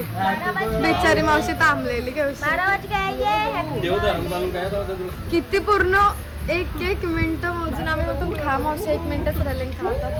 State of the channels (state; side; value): identical; both; correlation 1.00